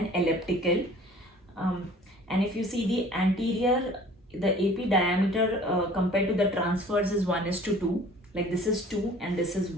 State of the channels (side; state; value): both; normal; correlation 0.49